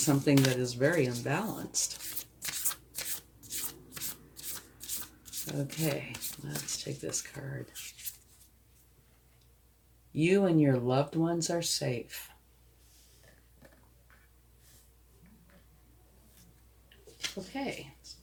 that is very unbalanced. Okay, let's take this card. You and your loved ones are safe. Okay, it's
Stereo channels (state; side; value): identical; both; correlation 1.00